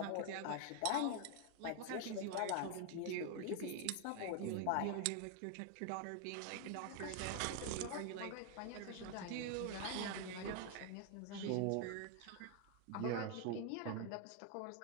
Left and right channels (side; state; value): both; different; correlation 0.00